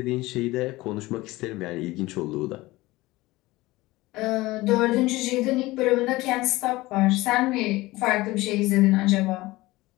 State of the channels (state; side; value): quieter; right; 19.5 dB